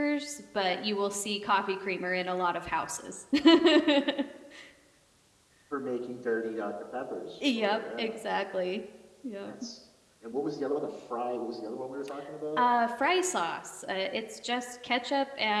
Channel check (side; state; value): both; identical; correlation 1.00